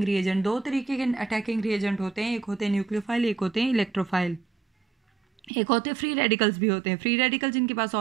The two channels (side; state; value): left; drops out; at 5.5 s